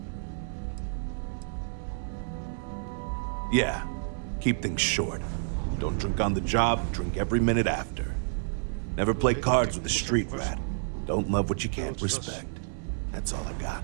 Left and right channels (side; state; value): left; silent; digital silence